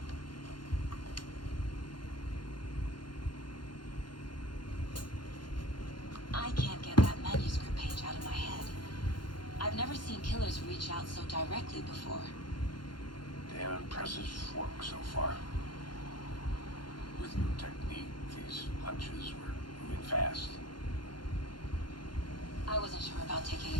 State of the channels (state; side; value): late; right; 0.71 ms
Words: I can't get that manuscript page out of my head. I've never seen killers reach out so directly before. Damn impressive work so far. With new technique, these hunches were moving fast. I wasn't sure about taking